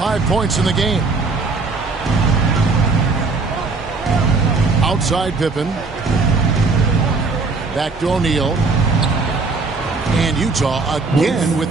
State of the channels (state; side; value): quieter; left; 4.0 dB